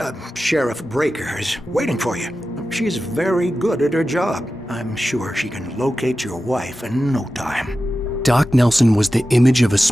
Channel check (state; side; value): normal; both; correlation 0.93